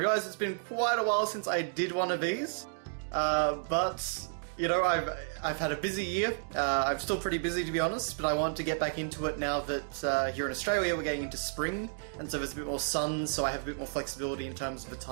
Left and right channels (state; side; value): silent; left; digital silence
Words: it's been quite a while since I did one of these, but, you know, I've had a busy year. I'm still pretty busy to be honest, but I want to get back into it now that here in Australia we're getting into spring, and so there's a bit more sun, so I have a bit more flexibility in terms of the